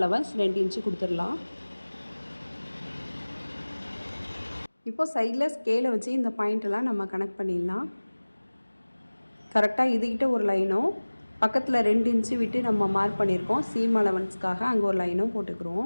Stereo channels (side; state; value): both; inverted; correlation -1.00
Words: 2 இன்ச்சு கொடுத்துடலாம். இப்போ சைடில் ஸ்கேலை வச்சு இந்த பாயிண்டெல்லாம் நம்ம கனெக்ட் பண்ணிடலாம். கரெக்டாக இதுகிட்ட ஒரு லைனும் பக்கத்தில் 2 இன்ச்சு விட்டு நம்ம மார்க் பண்ணியிருக்கோம். சீம் அலவன்ஸ்க்காக அங்கே ஒரு லைனும்